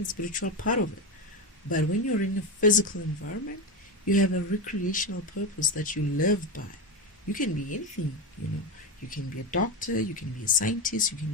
spiritual part of it. But when you're in a physical environment, you have a recreational purpose that you live by. You can be anything, You can be a doctor, you can be a scientist, you can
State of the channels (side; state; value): both; normal; correlation 0.16